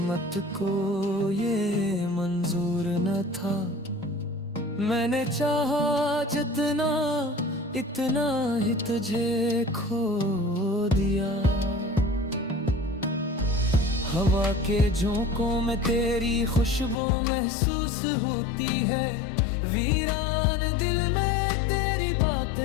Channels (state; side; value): drops out; right; at 16.9 s